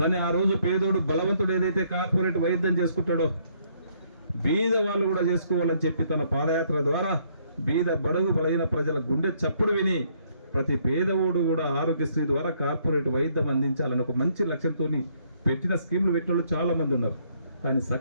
ఆ రోజు పేదోడు బలవంతుడు ఏదైతే కార్పొరేట్ వైద్యం చేసుకుంటాడో బీద వాళ్ళు కూడా చేసుకోవాలని చెప్పి తన పాదయాత్ర ద్వారా బీద బడుగు బలైన ప్రజల గుండె చప్పుడు విని ప్రతి పేదవాడు కూడా ఆరోగ్యశ్రీ ద్వారా కార్పొరేట్ వైద్యం అందించాలని ఒక మంచి లక్ష్యంతో పెట్టిన స్కీములు పెట్టిన వాళ్ళు చాలా మంది ఉన్నారు. కానీ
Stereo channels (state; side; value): inverted; both; correlation -0.68